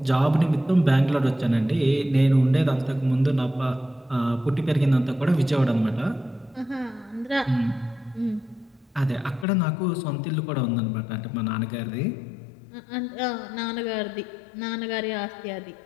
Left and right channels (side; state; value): right; drops out; at 9.5 s